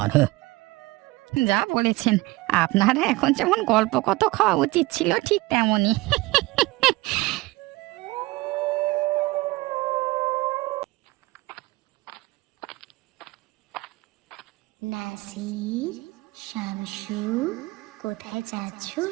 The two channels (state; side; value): quieter; left; 21.2 dB